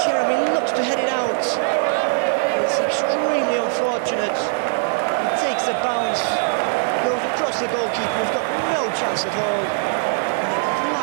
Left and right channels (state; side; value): silent; left; digital silence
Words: Jeremy looks to head it out, it's extremely unfortunate. It takes a bounce, goes across the goalkeeper, who's got no chance at all, and it